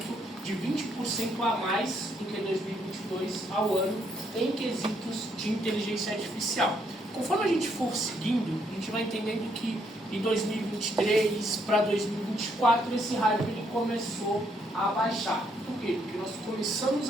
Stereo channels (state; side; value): normal; both; correlation 0.73